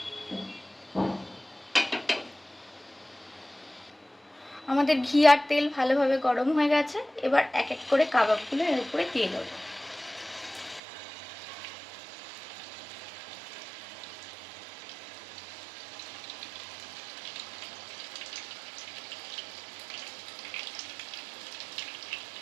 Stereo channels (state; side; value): drops out; left; at 10.8 s